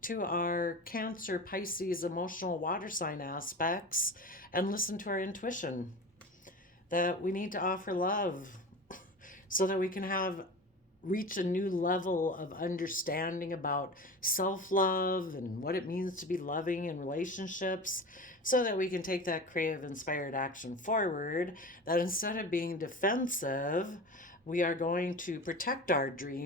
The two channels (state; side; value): normal; both; correlation 0.32